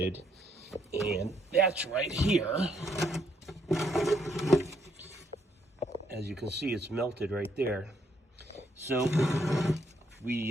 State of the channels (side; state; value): both; normal; correlation 0.72